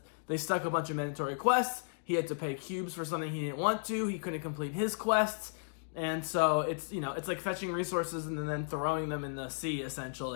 they stuck a bunch of mandatory quests. He had to pay cubes for something he didn't want to. He couldn't complete his quests, and so it's like fetching resources and then throwing them in the sea,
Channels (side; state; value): right; silent; digital silence